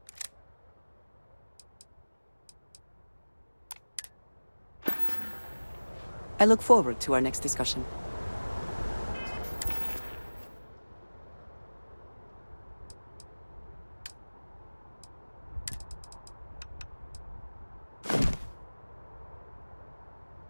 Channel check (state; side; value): inverted; both; correlation -1.00